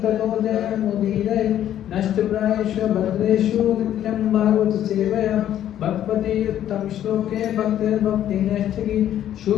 ततो जयमुदीरये नष्टप्रायेषु भद्रेषु नित्यं भागवत सेवया भगवती उत्तम श्लोके भक्तिर्भक्तिनैष्ठिकी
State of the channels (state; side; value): quieter; right; 11.3 dB